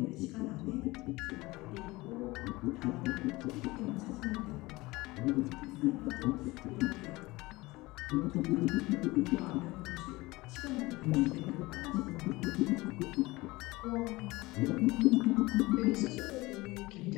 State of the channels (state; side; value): quieter; right; 21.0 dB